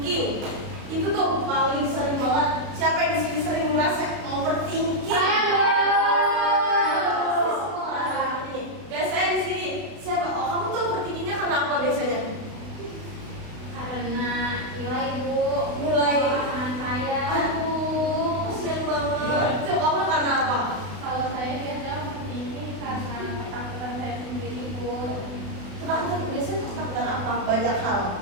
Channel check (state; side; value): late; left; 32 ms